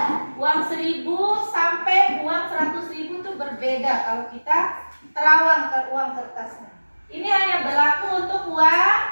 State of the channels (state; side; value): inverted; both; correlation -1.00